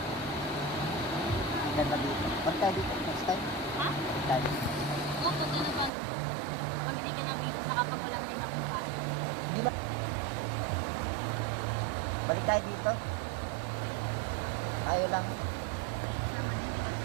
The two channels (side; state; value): left; drops out; at 5.9 s